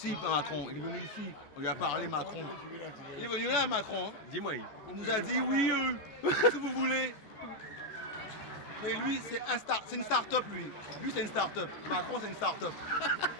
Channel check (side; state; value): right; late; 14 ms